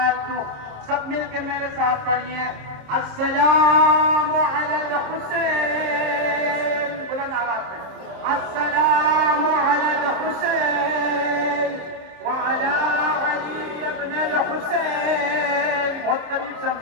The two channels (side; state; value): left; late; 26 ms